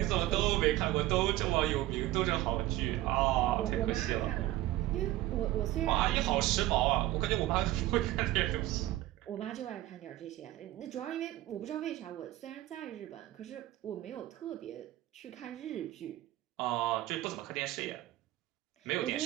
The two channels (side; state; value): left; quieter; 15.9 dB